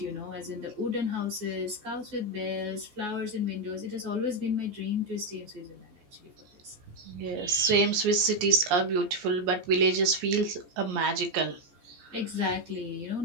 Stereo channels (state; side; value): late; left; 14 ms